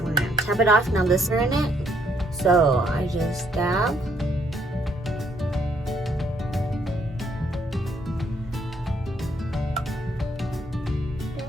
gonna tap it off. Now this is in it. So I just dab.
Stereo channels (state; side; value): normal; both; correlation 0.70